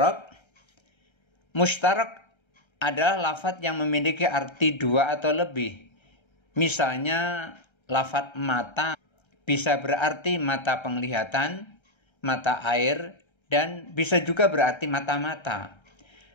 Mustarak adalah lafadz yang memiliki arti dua atau lebih. Misalnya lafadz mata bisa berarti mata penglihatan, mata air, dan bisa juga berarti mata-mata.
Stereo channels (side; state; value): right; late; 1.3 ms